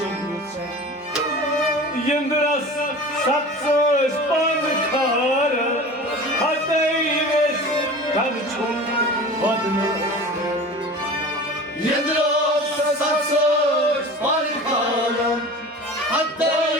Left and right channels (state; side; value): normal; both; correlation 0.37